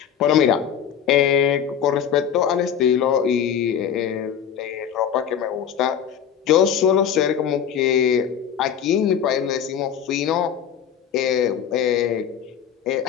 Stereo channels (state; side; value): quieter; right; 8.6 dB